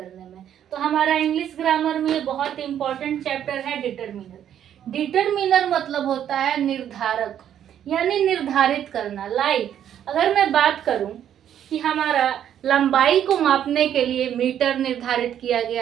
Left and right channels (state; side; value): quieter; left; 10.0 dB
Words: में। तो हमारा इंग्लिश ग्रामर में बहुत इंपॉर्टेंट चैप्टर है डिटरमिनर। डिटरमिनर मतलब होता है निर्धारक, यानी निर्धारित करना। अगर मैं बात करूं कि हमारा लंबाई को मापने के लिए मीटर निर्धारित किया